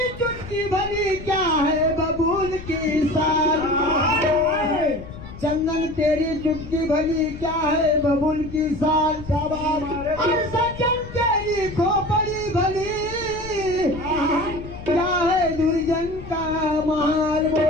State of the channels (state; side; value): noise; left; rumble, 13 dB below the sound